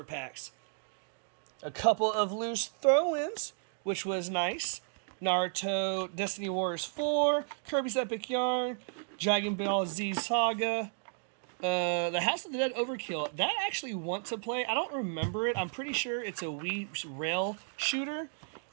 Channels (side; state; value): left; silent; digital silence